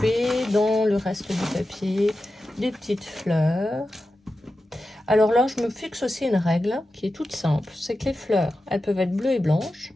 dans le reste du papier des petites fleurs. Alors là, je me fixe aussi une règle qui est toute simple. C'est que les fleurs, elles peuvent être bleues et blanches.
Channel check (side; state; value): both; normal; correlation 0.92